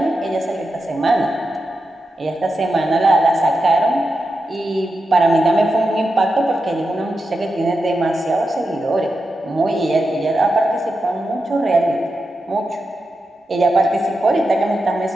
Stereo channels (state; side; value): normal; both; correlation 0.89